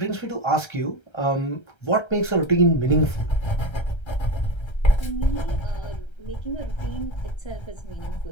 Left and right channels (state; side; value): late; right; 1.3 ms